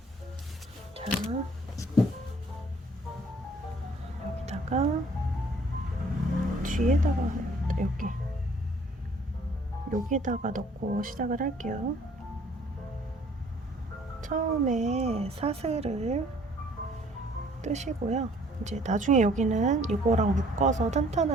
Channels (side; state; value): both; normal; correlation 0.57